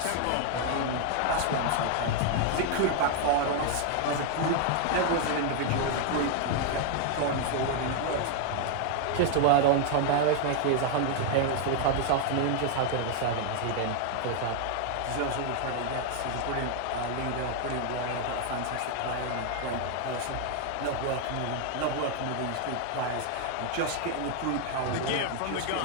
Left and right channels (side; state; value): both; different; correlation 0.00